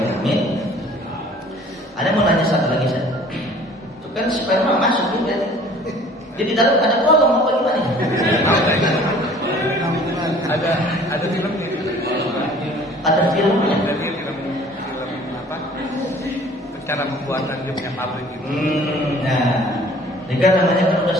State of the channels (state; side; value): normal; both; correlation 0.51